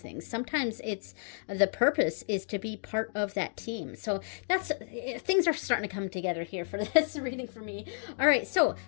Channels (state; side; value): silent; right; digital silence